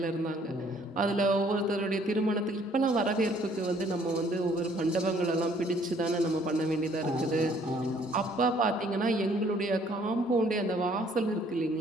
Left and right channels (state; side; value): normal; both; correlation 0.61